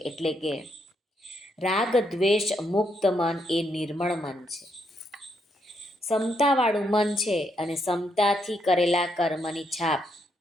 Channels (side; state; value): both; normal; correlation 0.77